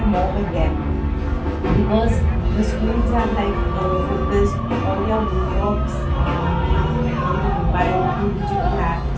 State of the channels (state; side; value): identical; both; correlation 1.00